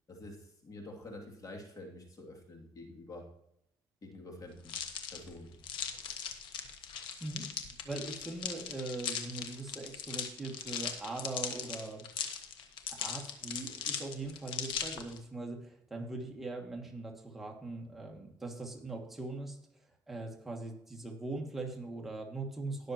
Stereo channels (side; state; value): both; normal; correlation 0.39